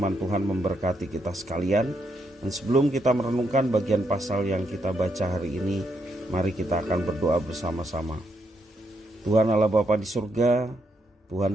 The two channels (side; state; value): both; normal; correlation 0.78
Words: Tuhan memberkati kita sekalian. Dan sebelum kita merenungkan bagian pasal yang kita baca hari ini, mari kita akan berdoa bersama-sama. Tuhan Allah Bapa di surga,